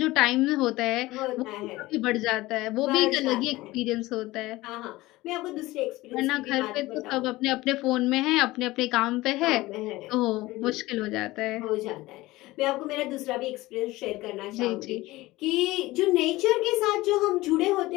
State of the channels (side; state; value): right; quieter; 19.0 dB